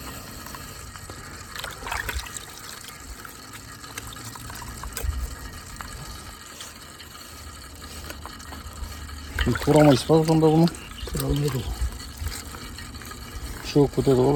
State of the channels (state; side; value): identical; both; correlation 1.00